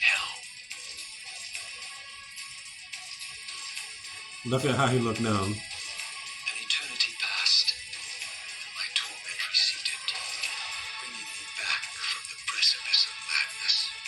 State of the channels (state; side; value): identical; both; correlation 1.00